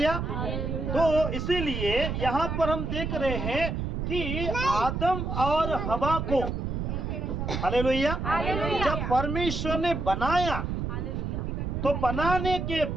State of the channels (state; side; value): noise; right; rumble, 3 dB below the sound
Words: तो इसीलिए यहाँ पर हम देख रहे हैं कि आदम और हवा को, हालेलुया, जब परमेश्वर ने बनाया तो बनाने के